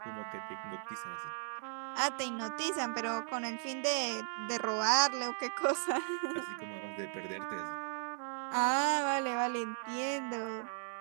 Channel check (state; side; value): silent; left; 53 dB below the other